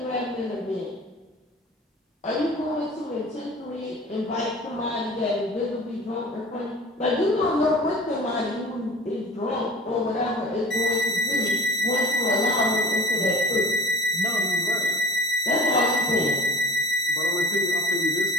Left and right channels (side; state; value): both; normal; correlation 0.42